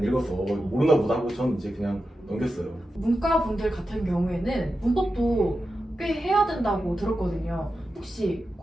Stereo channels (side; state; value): both; normal; correlation 0.91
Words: 읽어서 모르나 보다 하고 저는 이제 그냥 넘겼어요. 문과 분들 같은 경우에는 문법도 꽤 해야 된다고 들었거든요. 혹시